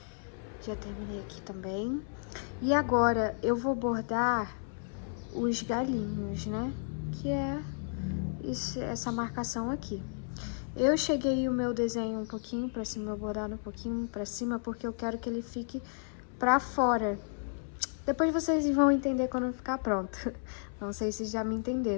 Já terminei aqui também. E agora eu vou bordar os galinhos, né? Que é essa marcação aqui. Eu cheguei o meu desenho um pouquinho pra cima, meu bordado um pouquinho pra cima, porque eu quero que ele fique pra fora. Depois vocês vão entender quando ficar pronto. Não sei se já me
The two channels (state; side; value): silent; right; 56 dB below the other